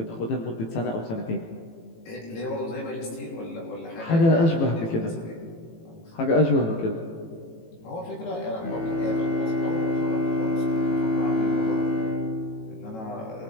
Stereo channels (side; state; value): right; late; 18 ms